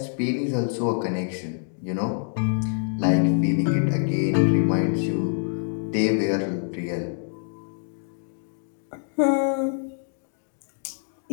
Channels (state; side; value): silent; right; 61 dB below the other